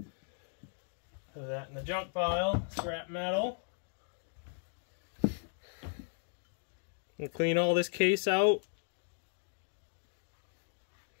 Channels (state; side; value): silent; right; digital silence